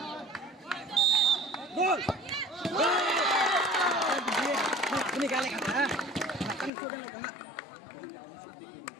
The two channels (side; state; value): right; drops out; at 6.7 s